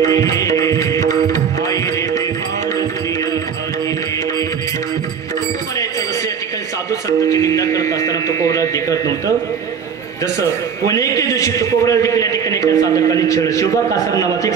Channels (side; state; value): left; quieter; 6.9 dB